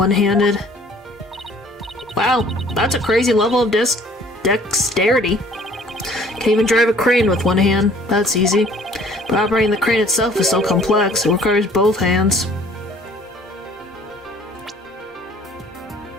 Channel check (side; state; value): both; normal; correlation 0.55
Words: Wow, that's a crazy level of dexterity. Can even drive a crane with one hand. That's easy. But operating the crane itself is so complex, it requires both hands.